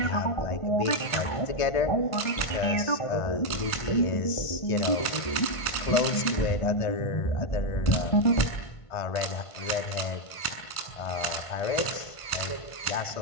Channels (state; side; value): late; right; 1.5 ms